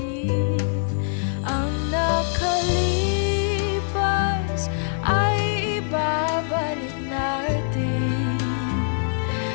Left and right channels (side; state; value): right; silent; digital silence